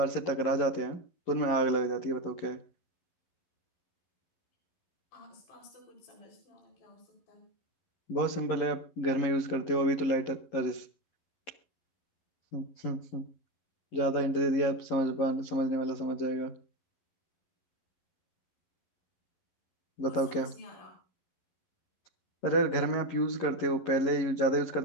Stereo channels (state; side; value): late; right; 11 ms